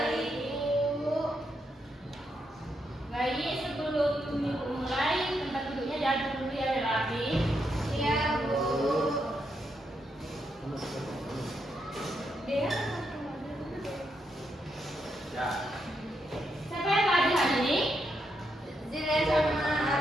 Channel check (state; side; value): normal; both; correlation 0.81